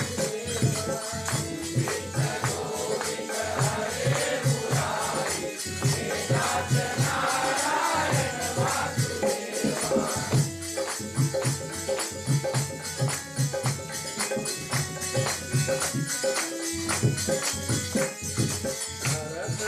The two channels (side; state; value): both; identical; correlation 1.00